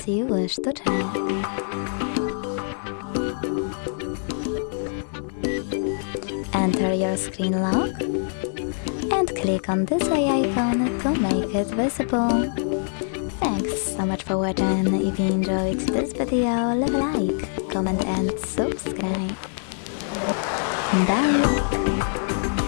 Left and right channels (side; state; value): right; silent; digital silence